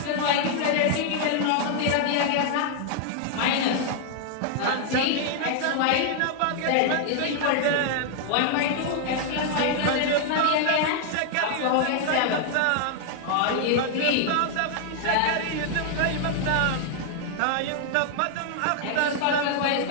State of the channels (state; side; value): different; both; correlation 0.00